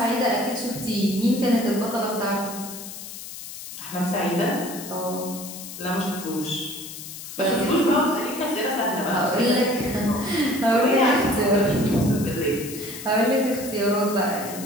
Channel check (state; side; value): noise; left; hiss, 11 dB below the sound